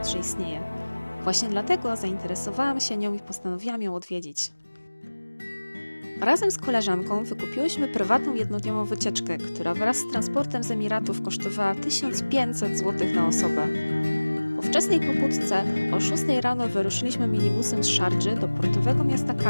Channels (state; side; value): inverted; both; correlation -1.00